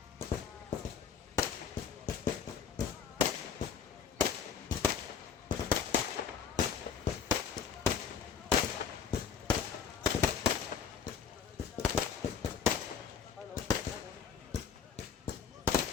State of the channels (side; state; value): right; quieter; 6.9 dB